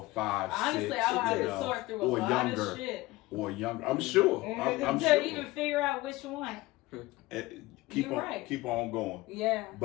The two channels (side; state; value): right; quieter; 19.5 dB